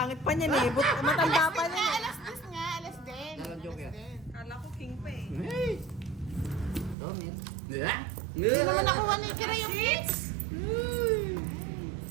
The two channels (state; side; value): drops out; left; at 7.0 s